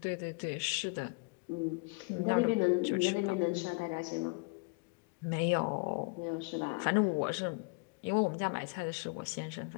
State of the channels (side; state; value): right; quieter; 30.1 dB